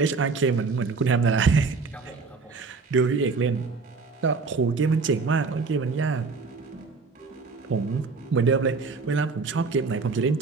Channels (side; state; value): left; quieter; 4.5 dB